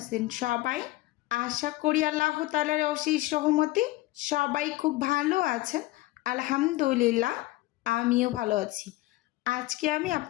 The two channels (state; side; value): quieter; right; 18.6 dB